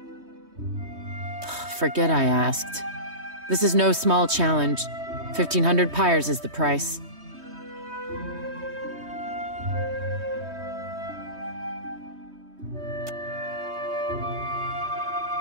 Forget I asked. This is no small challenge. 1,500 pyres is the price.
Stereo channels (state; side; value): late; left; 3.2 ms